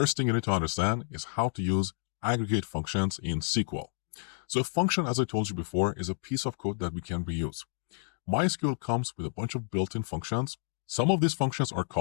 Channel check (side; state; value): right; silent; 58 dB below the other